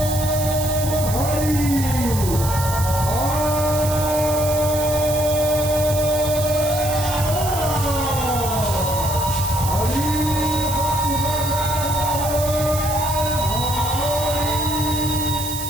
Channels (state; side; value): noise; right; hiss, 7 dB below the sound